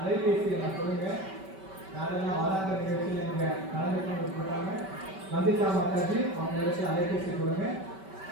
நான் கொடுங்க. யாரெல்லாம் வாராந்திர நிகழ்ச்சியில் நீங்க கலந்துக்கணும் விருப்பப்பட்டாங்க, வந்திதா மாதாஜி அவங்களுக்கு அலைபேசி கொடுங்க.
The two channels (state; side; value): late; left; 5.2 ms